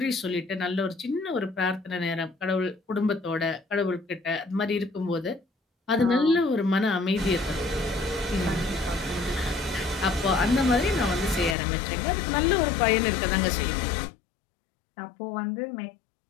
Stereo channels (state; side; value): drops out; right; at 11.6 s